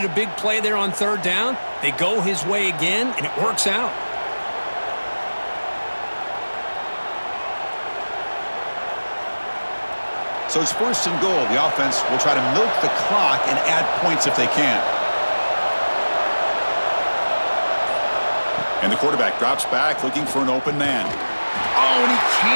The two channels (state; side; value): inverted; both; correlation -1.00